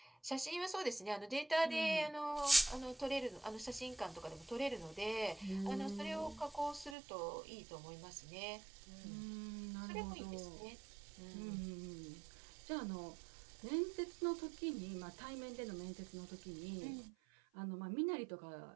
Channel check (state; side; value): drops out; left; at 7.0 s